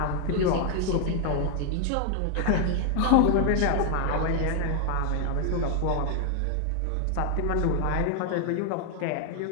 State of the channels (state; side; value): different; both; correlation 0.00